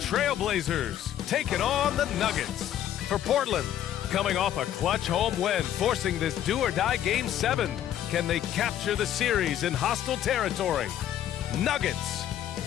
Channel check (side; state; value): right; quieter; 11.2 dB